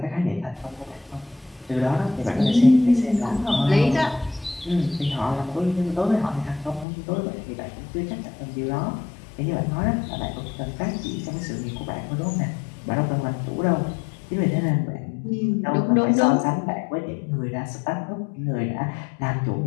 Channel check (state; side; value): drops out; right; at 6.9 s